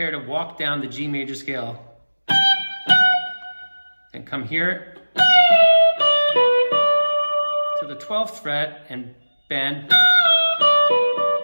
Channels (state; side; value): inverted; both; correlation -1.00